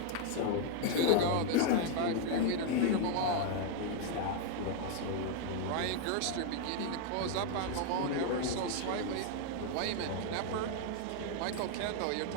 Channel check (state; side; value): different; both; correlation 0.00